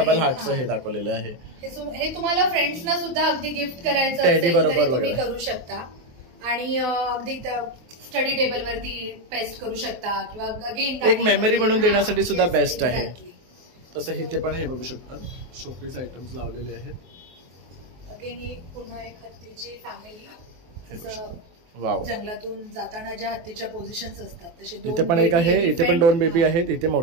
हार्टचं हे दाखवलेलं आहे. हे तुम्हाला फ्रेंड्सना सुद्धा अगदी गिफ्ट करायचं टेडी बरोबर तुम्ही करू शकता आणि अगदी स्टडी टेबल वरती पेस्ट करू शकता किंवा अगेन एक मेमरी म्हणून देण्यासाठी सुद्धा बेस्ट आहे. तसं इथे पण हे बघू शकतात शोपीस आयटम्स लावलेले आहेत. अगेन ही पुन्हा एक हत्तीची फॅमिली, वाव, जंगलातून जाताना ज्या हत्तीच्या पोझिशन्स असतात तसे इथे पण एक आहे, इथे पण 2 बेबी आहेत, इथे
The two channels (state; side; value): late; left; 23 ms